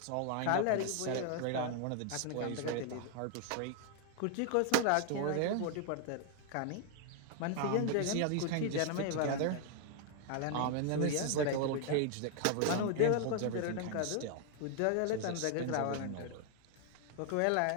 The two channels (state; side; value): different; both; correlation 0.00